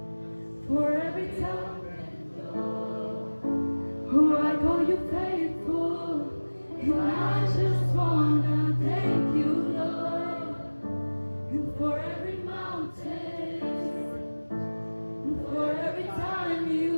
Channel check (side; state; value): both; inverted; correlation -1.00